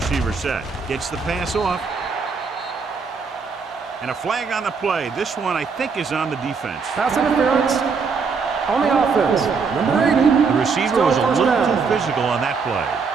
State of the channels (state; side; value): quieter; left; 5.2 dB